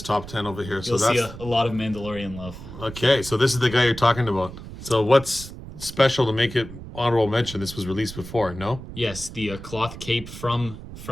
top 10 over here. So You'll that's see a lot of Mandalorian love. okay. So this is the guy you're talking about. So what's special to make it honorable mention? This was released before, no? Yes, the cloth cape from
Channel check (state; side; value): noise; right; rumble, 13 dB below the sound